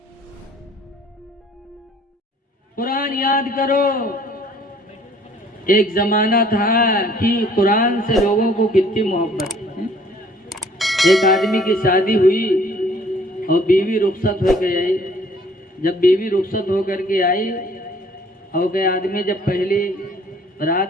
कुरान याद करो। एक जमाना था कि कुरान से लोगों को कितनी मोहब्बत है। एक आदमी की शादी हुई और बीवी रुखसत हो के आई। जब बीवी रुखसत होकर के आई और के आदमी जब पहली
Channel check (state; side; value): normal; both; correlation 0.57